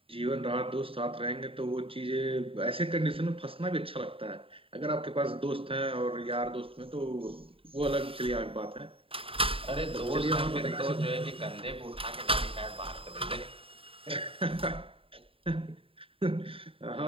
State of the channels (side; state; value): left; late; 0.27 ms